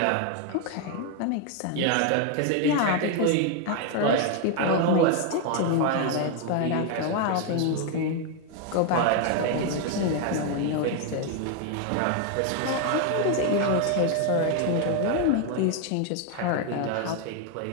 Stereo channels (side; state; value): both; different; correlation 0.01